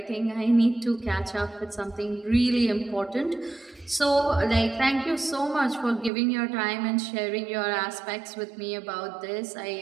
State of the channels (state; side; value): drops out; left; at 6.1 s